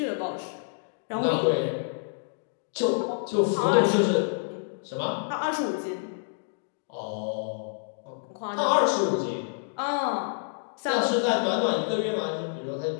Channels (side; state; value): right; silent; digital silence